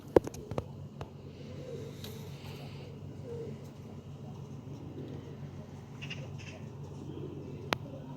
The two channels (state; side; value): identical; both; correlation 1.00